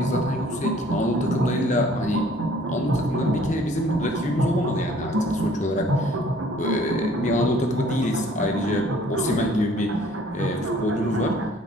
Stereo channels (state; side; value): normal; both; correlation 0.56